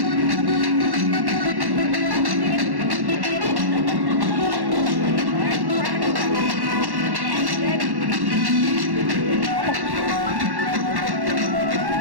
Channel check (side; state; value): left; late; 1.1 ms